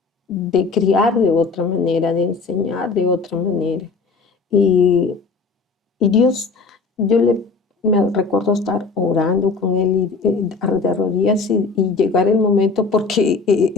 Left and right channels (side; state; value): right; quieter; 4.4 dB